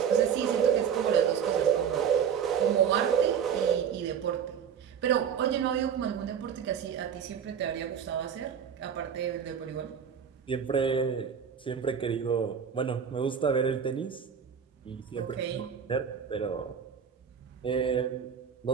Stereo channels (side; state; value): left; quieter; 7.7 dB